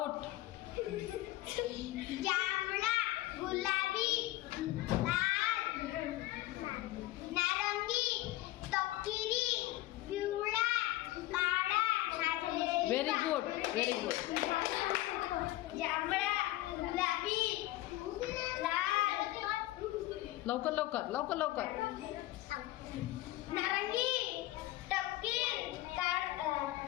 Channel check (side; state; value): right; quieter; 16.9 dB